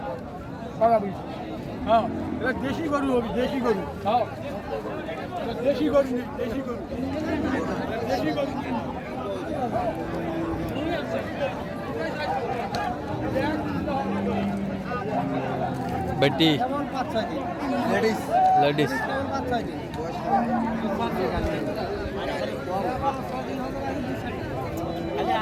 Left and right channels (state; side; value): identical; both; correlation 1.00